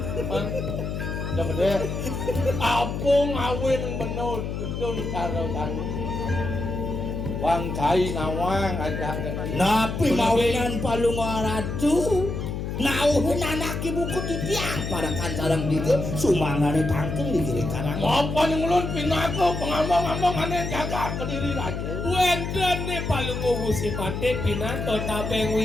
Dapat dia. Apung awin benou ketun karo kanu. Wang cai nawang ajak dengan Napi mawinan palunggo haratu. Nauhin anak ibu ku di tiang parakan sarang dieu sumangane tangkeng di kiri karang. apa yang ulun pinako pengambang-ambang aneh jaga Kediri aja. Wenten ne palunggu musipate pinato tabeng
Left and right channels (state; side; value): noise; left; hum, 4 dB below the sound